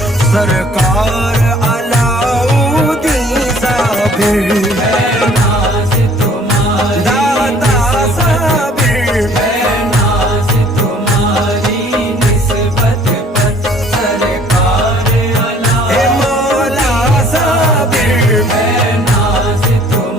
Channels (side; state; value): both; normal; correlation 0.56